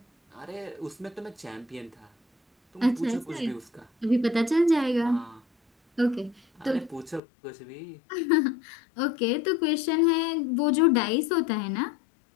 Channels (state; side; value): drops out; right; at 7.2 s